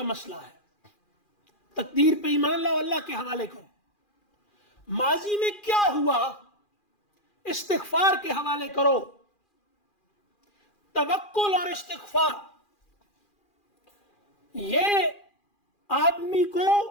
مسئلہ ہے. تقدیر پہ ایمان لاؤ, اللہ کے حوالے کرو. ماضی میں کیا ہوا استغفار کے حوالے کرو. توکل اور استغفار یہ آدمی کو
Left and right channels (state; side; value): late; right; 2.4 ms